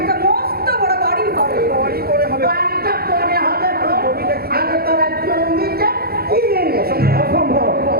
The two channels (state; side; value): late; left; 0.45 ms